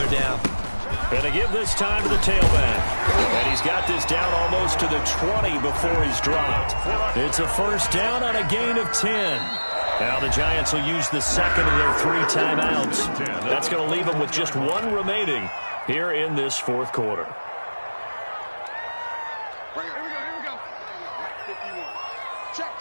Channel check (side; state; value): both; inverted; correlation -1.00